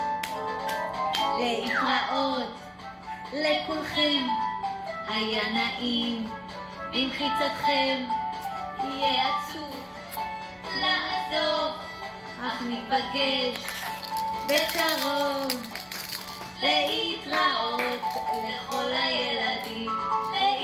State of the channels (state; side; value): identical; both; correlation 1.00